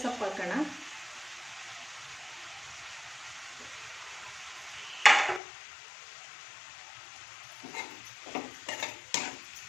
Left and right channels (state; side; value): drops out; right; at 5.4 s